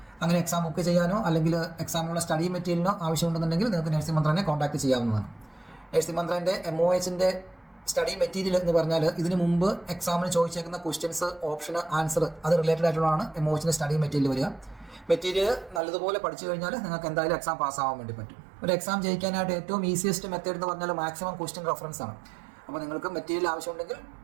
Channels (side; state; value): left; drops out; at 15.8 s